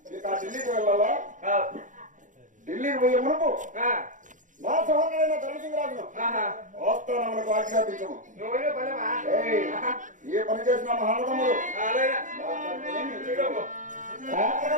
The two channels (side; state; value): left; late; 0.37 ms